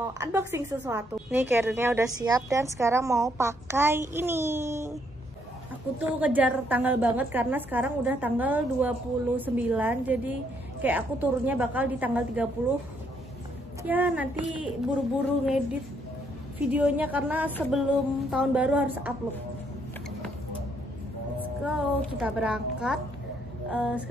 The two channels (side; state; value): both; normal; correlation 0.71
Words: unboxing sesuatu. Nih carrier-nya udah siap dan sekarang mau pakai ini. Aku tuh kejar tanggal banget karena sekarang udah tanggal 29, jadi kayak aku turunnya bakal di tanggal 30. Ya nanti buru-buru ngedit videonya karena sebelum tahun baru harus upload. Let's go, kita berangkat.